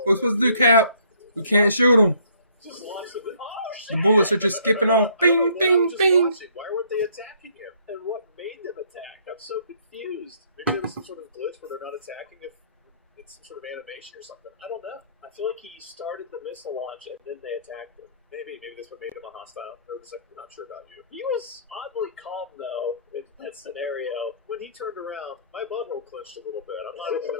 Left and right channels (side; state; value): both; inverted; correlation -0.62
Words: What are we supposed to do, Cap? We can't shoot them. The bullets are just skipping off. Bing, bing, bing. Why weren't they attacking him? And what made them attack? I'm so confused. Maybe there was some sort of glitch where they're not attacking if it's some sort of animation or something. I don't know. I feel like he started the missile launch and then they attacked him. Maybe this would make him a hostile. They were just like, we're not sure about you. He was oddly calm though in that scenario. When he turned around, my butthole clenched a little bit. I'm not even